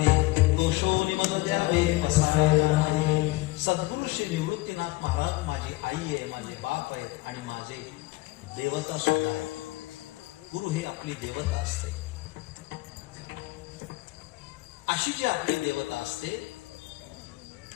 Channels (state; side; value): quieter; right; 20.5 dB